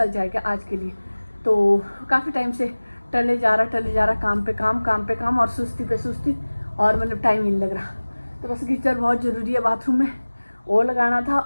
जाएगा आज के लिए। तो काफ़ी टाइम से टले जा रहा, काम पे काम और सुस्ती पे सुस्ती, और मतलब टाइम ही नहीं लग रहा। तो बस गीज़र बहुत ज़रूरी है बाथरूम में, वो लगाना था।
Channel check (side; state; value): both; inverted; correlation -1.00